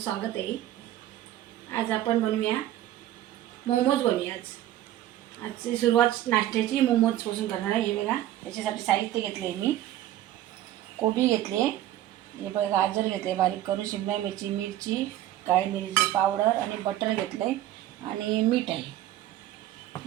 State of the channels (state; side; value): quieter; left; 13.4 dB